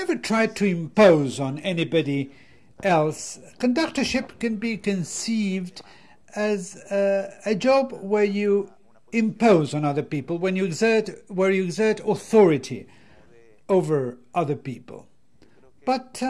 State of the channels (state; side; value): identical; both; correlation 1.00